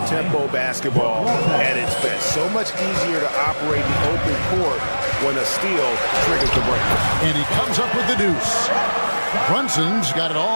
basketball at its best. So much easier to operate the open court when a steal triggers the break. And he comes up with the deuce. Brunson's got it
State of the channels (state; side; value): inverted; both; correlation -1.00